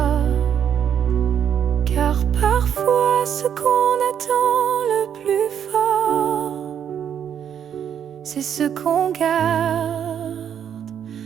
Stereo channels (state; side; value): quieter; left; 8.8 dB